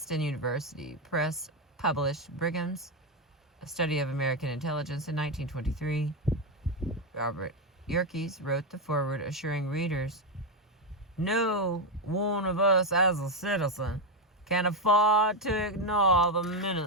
University Press published Brigham's A Study of American Intelligence in 1923. Robert Yerkes wrote the foreword, assuring readers, "No one of us as a citizen can afford to ignore the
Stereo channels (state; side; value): normal; both; correlation 0.07